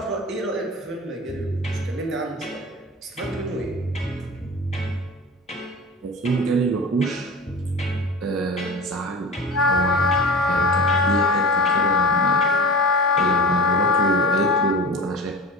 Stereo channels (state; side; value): normal; both; correlation 0.32